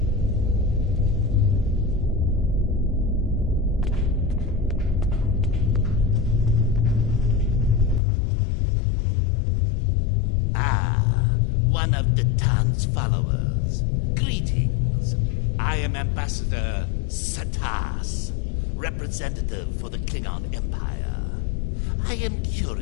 One of Datan's followers. Greetings. I am Ambassador Satas, representative for the Klingon Empire. I am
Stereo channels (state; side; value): drops out; right; at 8.0 s